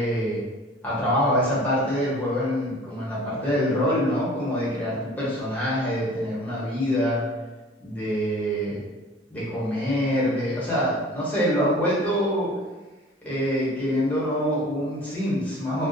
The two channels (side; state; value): both; normal; correlation 0.46